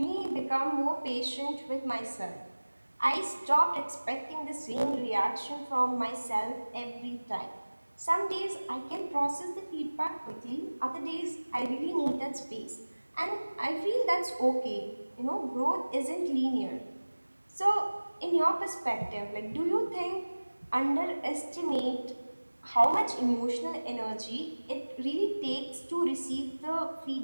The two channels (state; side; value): inverted; both; correlation -1.00